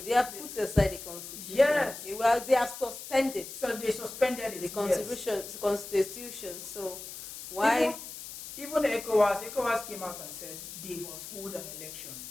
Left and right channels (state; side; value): noise; left; hiss, 11 dB below the sound